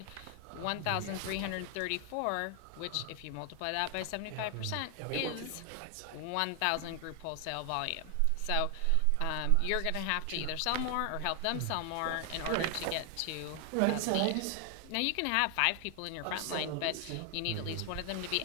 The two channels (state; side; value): different; both; correlation 0.00